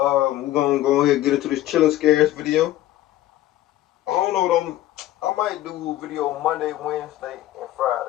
gonna go ahead and get into this chilling scares video. I don't know what I might do a video Monday, Wednesday, and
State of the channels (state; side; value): quieter; right; 14.5 dB